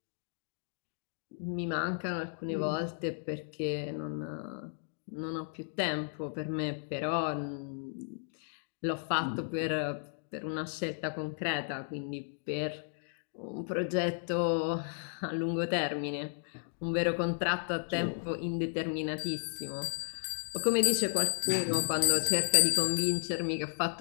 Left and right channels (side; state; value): right; silent; digital silence